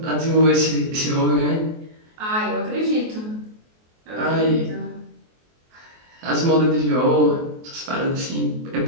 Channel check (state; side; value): late; left; 23 ms